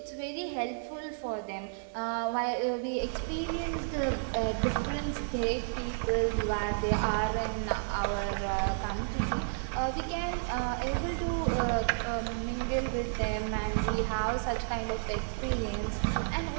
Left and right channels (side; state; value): left; silent; digital silence